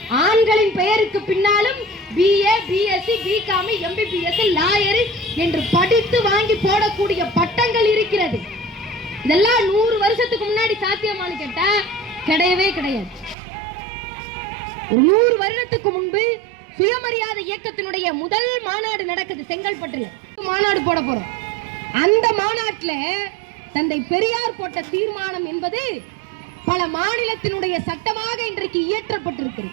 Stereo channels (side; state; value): left; drops out; at 13.4 s